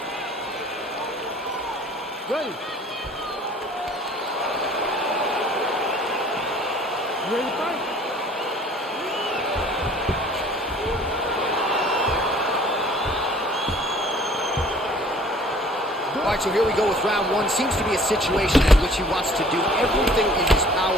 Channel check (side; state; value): both; normal; correlation 0.52